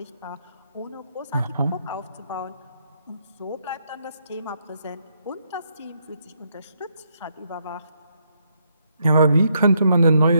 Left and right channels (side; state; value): both; inverted; correlation -0.76